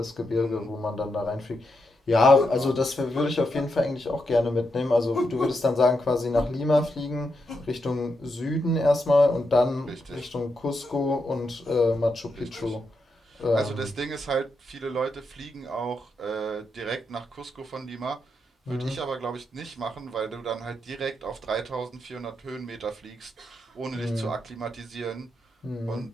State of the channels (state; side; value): normal; both; correlation 0.84